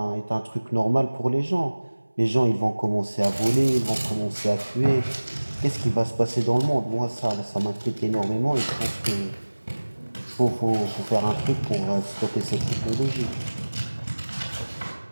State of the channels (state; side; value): inverted; both; correlation -1.00